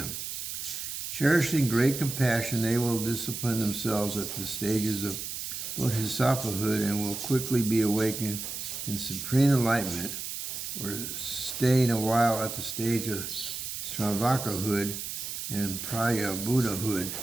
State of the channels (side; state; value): right; noise; hiss, 6 dB below the sound